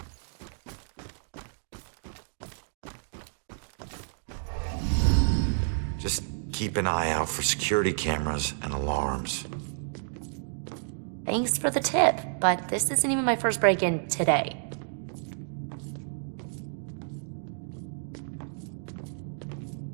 Just keep an eye out for security cameras and alarms. Thanks for the tip, but this isn't even my first break-in today.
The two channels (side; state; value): left; silent; digital silence